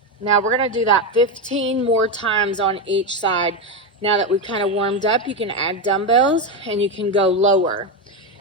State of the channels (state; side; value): normal; both; correlation 0.11